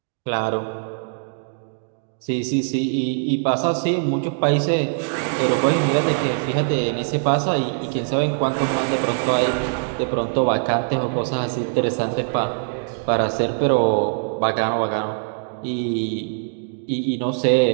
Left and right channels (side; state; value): left; silent; digital silence